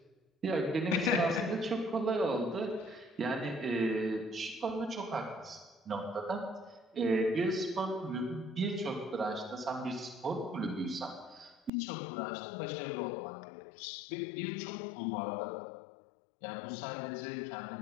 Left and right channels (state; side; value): drops out; right; at 11.7 s